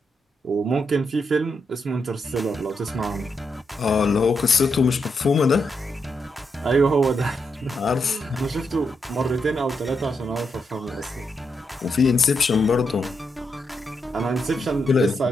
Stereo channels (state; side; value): normal; both; correlation 0.82